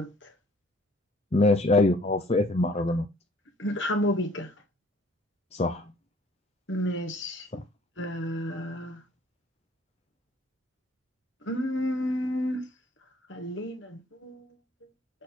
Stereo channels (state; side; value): normal; both; correlation 0.57